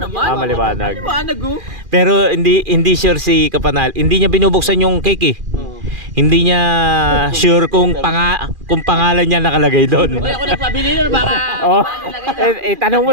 Ah, maliwanag. Liwanag oh. Pero hindi sure si Kapanal. Hindi niya binubuksan yung cake eh. Hindi niya sure kung pangalan niya nakalagay doon. Uy, ako nagpabili na baka Oh. Tanong mo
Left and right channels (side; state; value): left; late; 2.4 ms